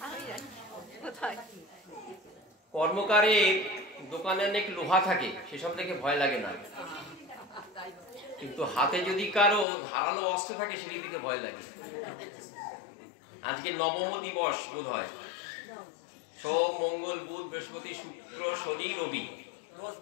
কর্মকারের দোকানে অনেক লোহা থাকে, সেসব দেখে ভয় লাগে না, কিন্তু হাতে যদি কারো ধারালো অস্ত্র থাকে সেটি দিকে ভয় লাগে। আজকে নবম দিবস বোধ হয়, সোম মঙ্গল বুধ বৃহস্পতি শুক্র শনি রবি,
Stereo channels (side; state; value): right; drops out; at 9.7 s